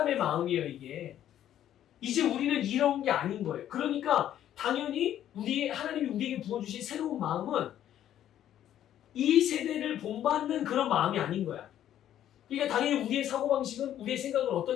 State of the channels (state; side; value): quieter; right; 11.3 dB